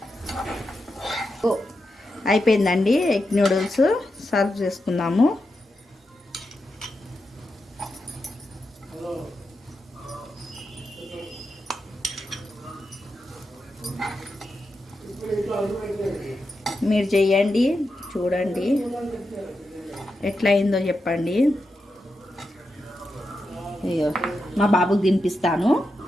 అయిపోయిందండి ఎగ్ నూడిల్స్. సర్వ్ చేసుకుందాము. మీరు చేయండి, చూడండి ఎట్లా అయిందో చెప్పండి. అయ్యో మా బాబుకి తినిపిస్తాను.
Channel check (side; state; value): both; normal; correlation 0.88